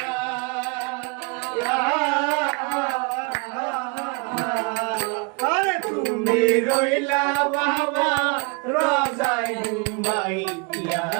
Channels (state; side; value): quieter; left; 32.9 dB